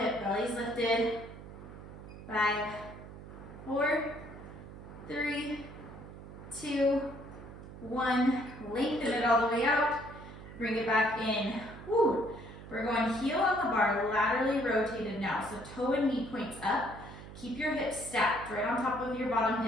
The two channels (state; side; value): noise; right; hum, 14 dB below the sound